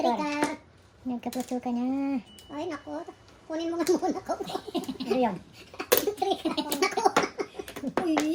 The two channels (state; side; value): identical; both; correlation 1.00